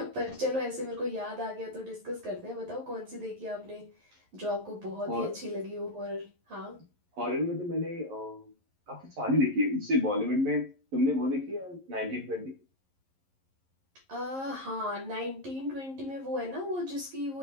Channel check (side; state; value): left; late; 11 ms